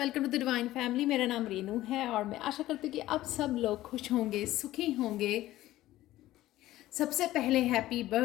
to the divine family. मेरा नाम रेनू है और मैं आशा करती हूँ कि आप सब लोग खुश होंगे, सुखी होंगे। सबसे पहले happy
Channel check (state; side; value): quieter; right; 15.4 dB